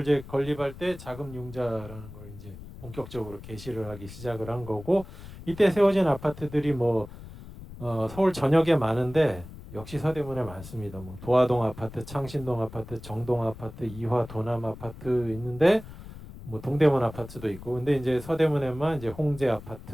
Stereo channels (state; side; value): noise; left; rumble, 15 dB below the sound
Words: 이제 건립할 때 자금 융자라는 걸 이제 본격적으로 개시를 하기 시작을 한 거고, 이때 세워진 아파트들이 뭐 서울 전역에 많은데 역시 서대문에 많습니다. 뭐 도화동 아파트, 창신동 아파트, 정동 아파트, 이화 도남 아파트 있는데. 뭐 동대문 아파트도 있고, 근데 이제 서대문에만 이제 홍제